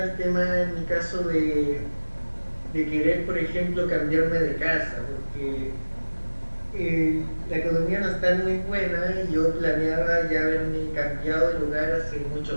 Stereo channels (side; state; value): both; inverted; correlation -1.00